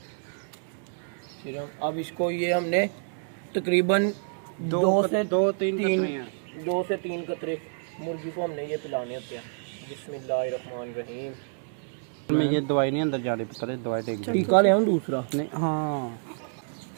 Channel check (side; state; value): left; silent; digital silence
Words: सीरम। अब इसको ये हमने तकरीबन 2 से 3 कतरे मुर्गी को हमने ये पिलाने होते हैं। बिस्मिल्लाहिर्रहमानिर्रहीम। मैं ये दवाई नहीं अंदर जाने पता है, दवाई टेक टीका ले आऊं दूसरा? नहीं, हाँ।